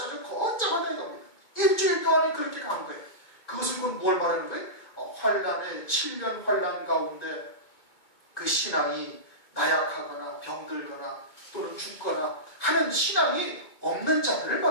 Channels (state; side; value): late; right; 2.2 ms